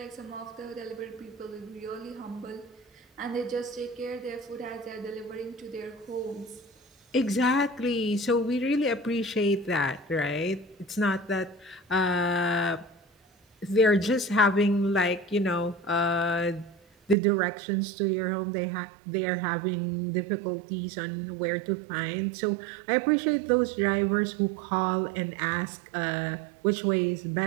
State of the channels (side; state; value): left; drops out; at 17.2 s